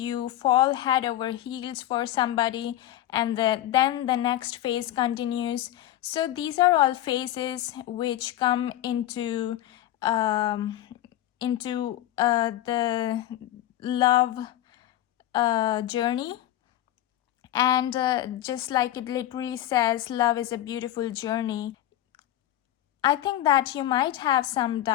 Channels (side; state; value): right; quieter; 13.4 dB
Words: fall head over heels for somebody, and then the next phase continues. So these are all phases which come into the love journey. And just like it literally says, love is a beautiful journey. I think that you might have some